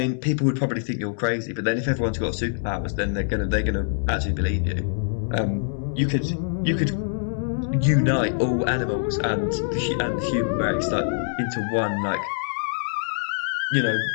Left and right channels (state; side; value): silent; right; digital silence